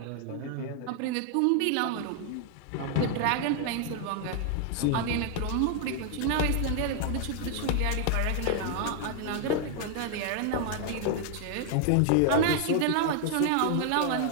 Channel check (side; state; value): both; different; correlation 0.00